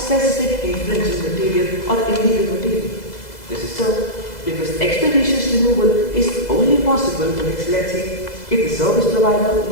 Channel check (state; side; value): late; right; 2.0 ms